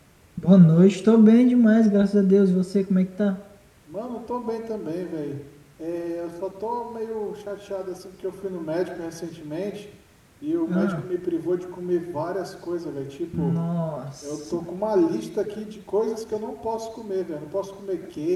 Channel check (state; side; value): identical; both; correlation 1.00